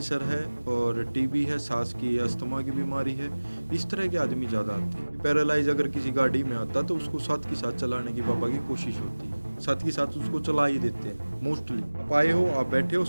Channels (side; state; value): both; inverted; correlation -1.00